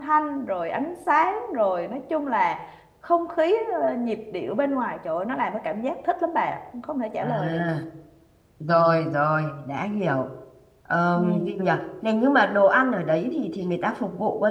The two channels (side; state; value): both; identical; correlation 1.00